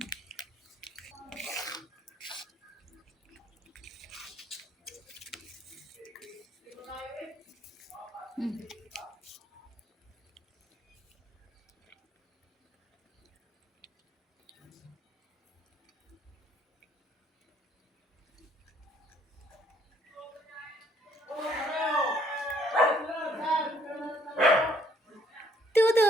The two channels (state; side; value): normal; both; correlation 0.65